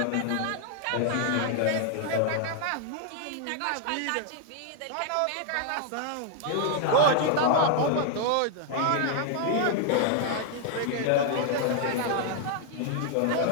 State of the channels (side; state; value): both; different; correlation 0.00